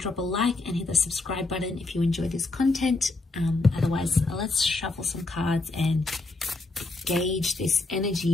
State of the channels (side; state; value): right; quieter; 3.3 dB